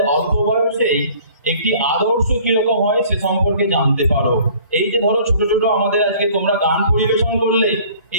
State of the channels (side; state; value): both; inverted; correlation -0.52